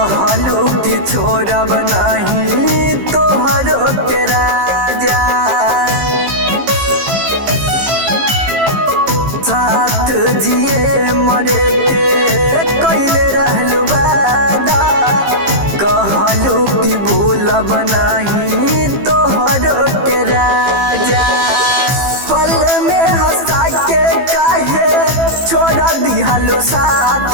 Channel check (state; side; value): late; left; 15 ms